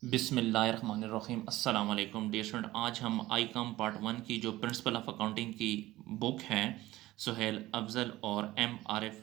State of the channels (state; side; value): quieter; left; 16.9 dB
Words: बिस्मिल्लाहिर्रहमानिर्रहीम अस्सलाम वालेकुम डियर स्टूडेंट। आज हम आईकॉम पार्ट 1 की जो प्रिंसिपल ऑफ अकाउंटिंग की बुक है सुहेल अफजल और एम